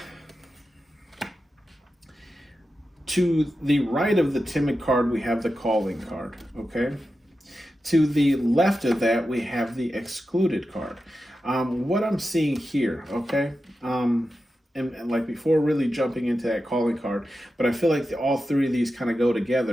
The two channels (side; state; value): both; normal; correlation 0.91